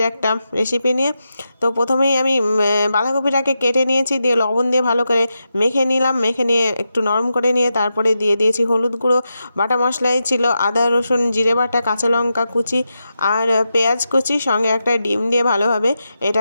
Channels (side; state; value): both; inverted; correlation -0.88